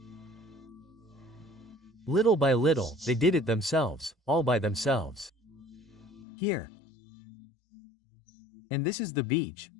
Little by little, they did it themselves, all by themselves. Here. And this is the beach,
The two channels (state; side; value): drops out; right; at 6.2 s